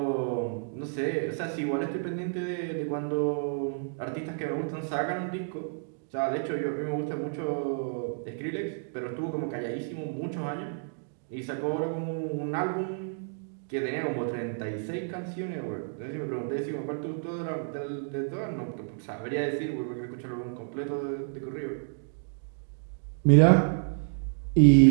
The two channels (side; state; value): left; silent; digital silence